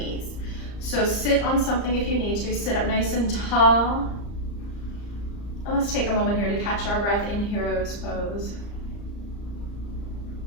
So sit on something if you need to. Sit up nice and tall. And let's take a moment here to catch our breath in hero's pose.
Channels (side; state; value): right; late; 34 ms